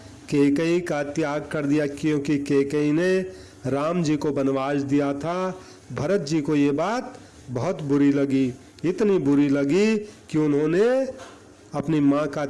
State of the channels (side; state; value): both; identical; correlation 1.00